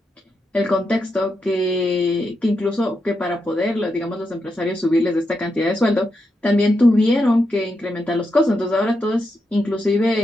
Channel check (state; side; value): normal; both; correlation 0.85